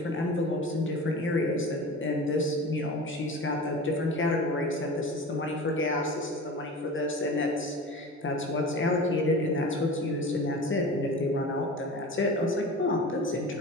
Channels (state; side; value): normal; both; correlation 0.34